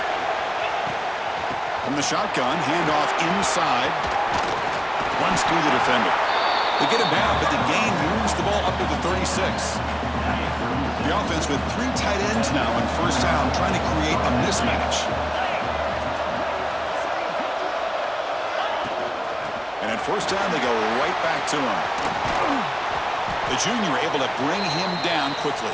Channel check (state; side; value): identical; both; correlation 1.00